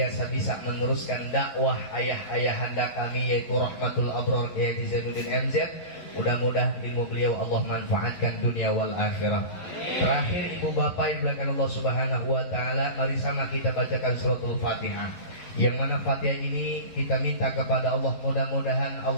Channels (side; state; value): right; late; 11 ms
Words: bisa meneruskan dakwah ayah-ayahanda kami yaitu Rahmatul Abrar Kiai Haji Zainuddin MZ. Mudah-mudahan ilmu beliau Allah manfaatkan dunia wal akhirah. Terakhir ibu bapak yang belakang Allah Subhanahu wa taala, mari sama kita bacakan suratul Fatihah. Yang mana Fatihah ini kita minta kepada Allah, mudah-mudahan